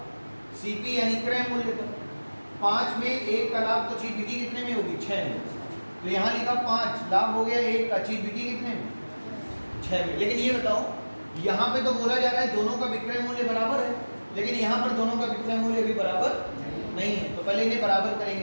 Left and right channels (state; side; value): inverted; both; correlation -1.00